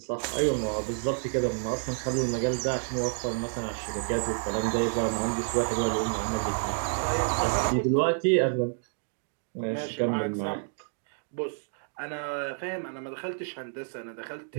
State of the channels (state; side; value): silent; left; digital silence